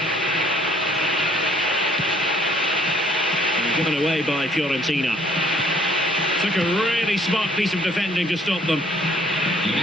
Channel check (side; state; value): both; normal; correlation 0.61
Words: And given away by Fiorentina. Took a really smart piece of defending to stop them.